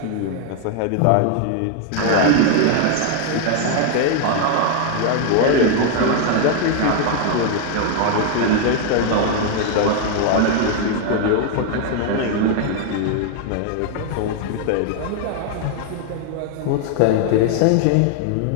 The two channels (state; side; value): different; both; correlation 0.00